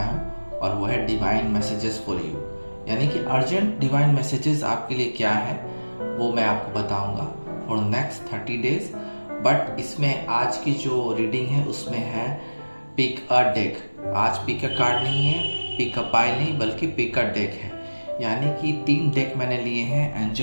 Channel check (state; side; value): inverted; both; correlation -1.00